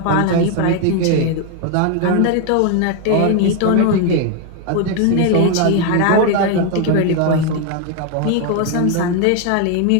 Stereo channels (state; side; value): different; both; correlation 0.01